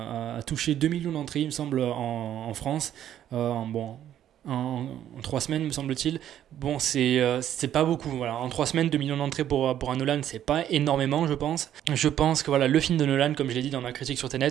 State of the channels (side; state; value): left; quieter; 11.0 dB